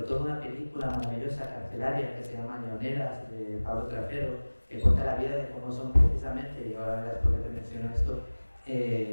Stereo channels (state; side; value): inverted; both; correlation -1.00